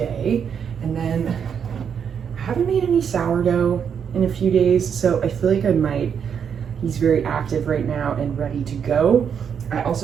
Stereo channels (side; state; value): left; quieter; 7.5 dB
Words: And then I haven't made any sourdough in a few days, so I feel like I might. He's very active right now and ready to go. I